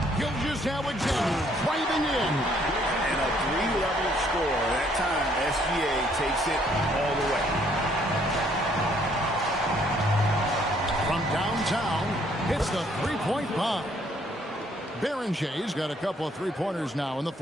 Gilgeous-Alexander driving in. And a 3-level score. That time, SGA takes it all the way. From downtown, hits the three-point bomb. Berenger's got a couple of three-pointers now in the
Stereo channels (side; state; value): both; normal; correlation 0.65